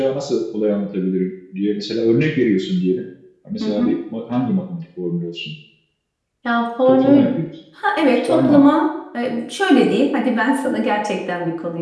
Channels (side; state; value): both; identical; correlation 1.00